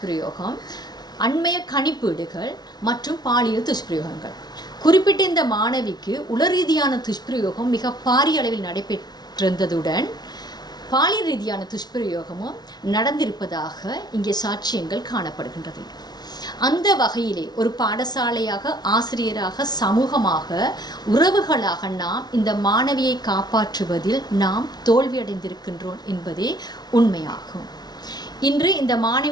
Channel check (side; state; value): right; late; 0.19 ms